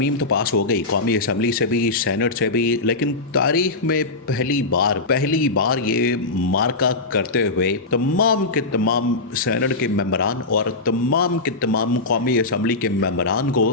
तो पास हो गई कौमी असम्बली से भी सेनेट से भी, लेकिन तारीख में पहली बार ये मार्का करते हुए तमाम के तमाम सेनेट के मेंबरान और तमाम के तमाम कौमी असम्बली के मेंबरान को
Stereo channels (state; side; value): quieter; right; 3.3 dB